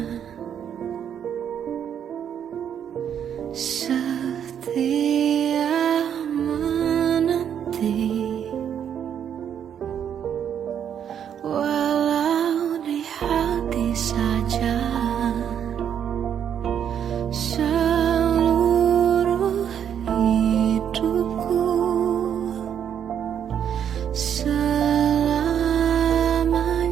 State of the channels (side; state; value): left; quieter; 8.8 dB